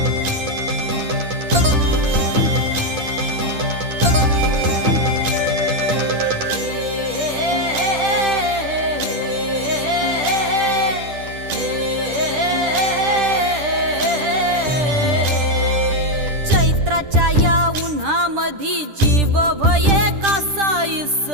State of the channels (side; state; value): left; late; 10 ms